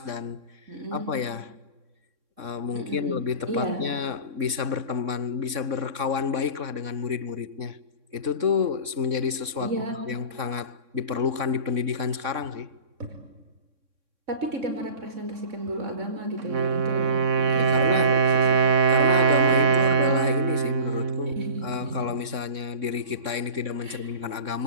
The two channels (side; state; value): left; late; 3.6 ms